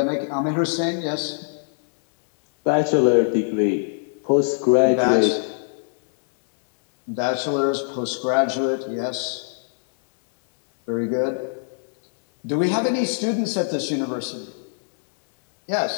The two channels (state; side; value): silent; right; digital silence